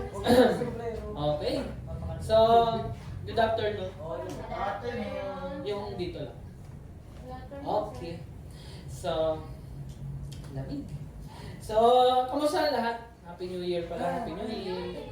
Okay. So, good afternoon. Yung dito lang. Okay. So, lamig. So, kamusta lahat? Happy New Year pala, Happy New Year.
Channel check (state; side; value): identical; both; correlation 1.00